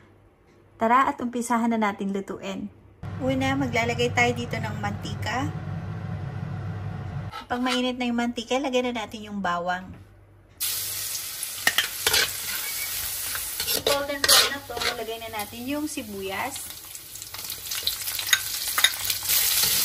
Tara at umpisahan na natin lutuin. Una, maglalagay tayo dito ng mantika. Pag mainit na yung mantika, lagyan na natin yung bawang. Golden brown na to, lagay na natin yung sibuyas.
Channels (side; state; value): both; identical; correlation 1.00